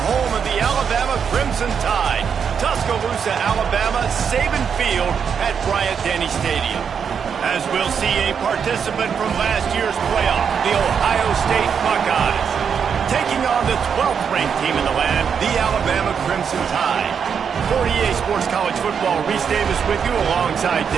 home of the Alabama Crimson Tide, Tuscaloosa, Alabama, Saban Field at Bryant-Denny Stadium. As we'll see a participant from last year's playoff, the Ohio State Buckeyes, taking on the 12th ranked team in the land, the Alabama Crimson Tide. 48 Sports College Football, Reese Davis with you alongside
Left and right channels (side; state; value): left; quieter; 7.0 dB